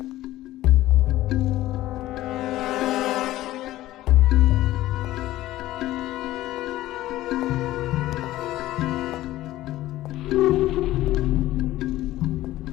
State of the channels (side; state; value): right; quieter; 15.6 dB